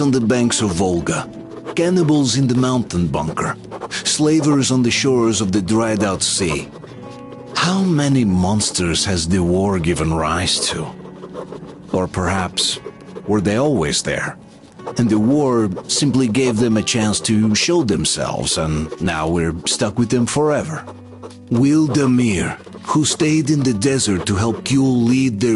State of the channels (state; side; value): identical; both; correlation 1.00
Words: the banks of Volga, cannibals in the mountain bunker, slavers on the shores of the dried-out sea. How many monsters has the war given rise to? Or perhaps, were they always there? And the war simply gave them a chance to show themselves, and now we're stuck with them forever. Will Damir, who stayed in the desert to help Gyul lead